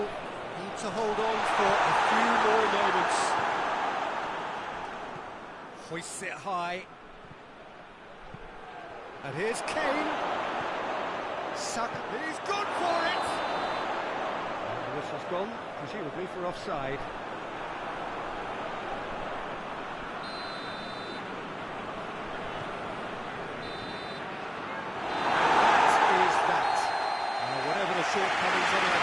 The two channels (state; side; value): identical; both; correlation 1.00